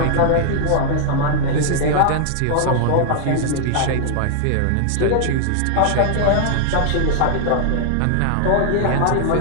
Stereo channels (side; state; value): both; different; correlation -0.01